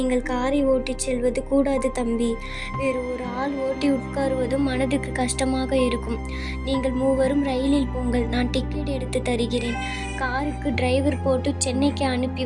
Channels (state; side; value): identical; both; correlation 1.00